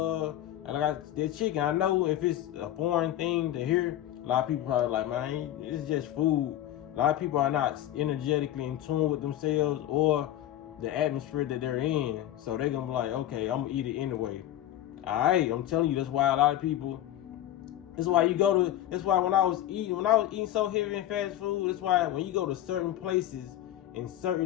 chicken. I know if it's a foreign thing to hear, a lot of people probably like, man, it's just food. A lot of people are not energetically in tune with themselves or the atmosphere that they're in. So they're gonna be like, okay, I'm gonna eat it anyway. Alright, I'm telling you, that's why a lot of people, that's why when I was eating so heavy in fast food, that's why when you go to certain places in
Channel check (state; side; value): quieter; right; 12.8 dB